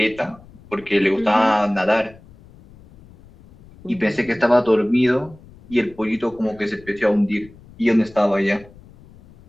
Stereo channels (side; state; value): left; noise; rumble, 24 dB below the sound